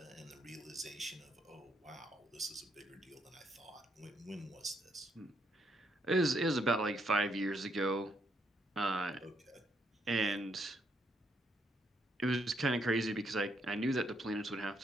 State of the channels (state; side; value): normal; both; correlation 0.74